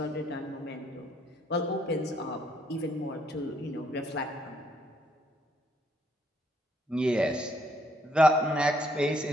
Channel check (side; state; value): both; normal; correlation 0.69